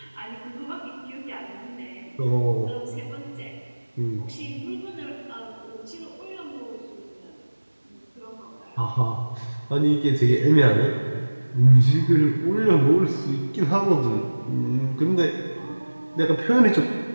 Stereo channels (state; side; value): inverted; both; correlation -1.00